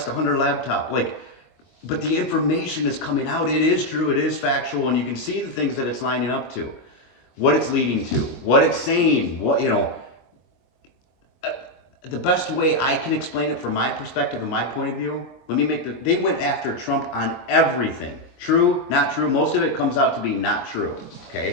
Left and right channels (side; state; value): right; late; 23 ms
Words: the Hunter laptop. But the information is coming out. It is true, it is factual, and you can see the things that it's lining up to, what it's leading to, what it's saying, the best way I can explain it from my perspective and my point of view, they went after Trump on everything. True, not true. Most of it comes out to be not true.